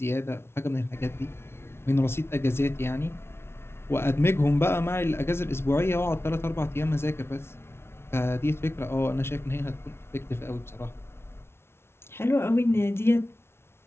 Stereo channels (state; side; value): late; right; 0.12 ms